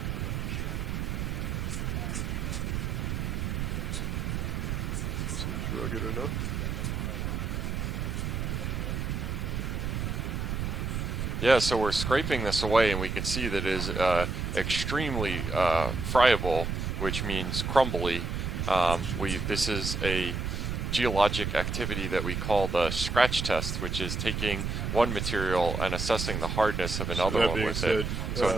Seems rugged enough. Yeah, so we're scraping this away, and we can see that it is extremely friable, which means crumbly. This is a geologic activity that we call the scratch test, which is taking one material and assessing the hardness of another one with it. So in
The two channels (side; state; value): right; noise; rumble, 2 dB below the sound